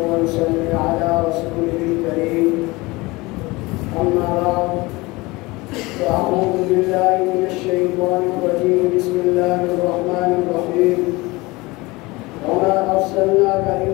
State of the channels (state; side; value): quieter; right; 22.6 dB